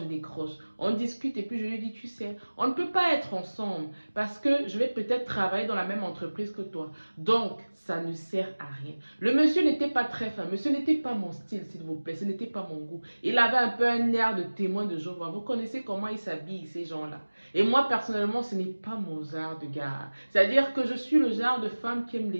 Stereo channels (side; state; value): both; inverted; correlation -1.00